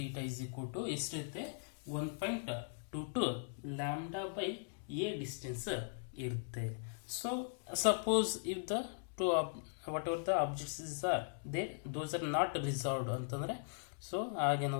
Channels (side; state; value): right; silent; digital silence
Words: theta is equal to ಎಷ್ಟಿರುತ್ತೆ, 1.22 ಲ್ಯಾಂಬ್ಡಾ ಬೈ ಎ ಡಿಸ್ಟೆನ್ಸ್ ಇರುತ್ತೆ. So suppose if the two whatever the objects are there, those are not resolved ಅಂತಂದ್ರೆ, so